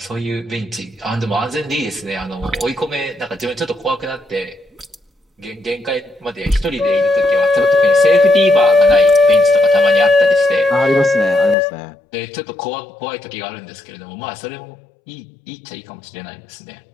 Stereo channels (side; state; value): right; drops out; at 11.6 s